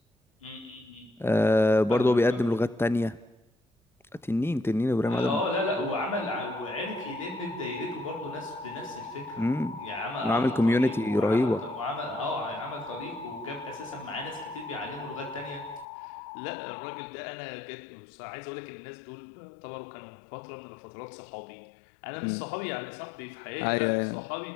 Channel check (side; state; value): right; drops out; at 15.9 s